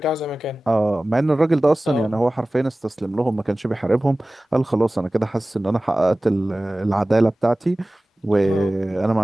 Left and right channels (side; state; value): both; normal; correlation 0.97